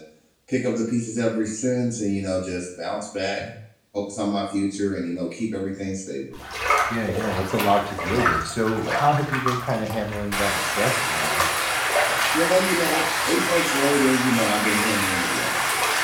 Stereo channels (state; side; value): identical; both; correlation 1.00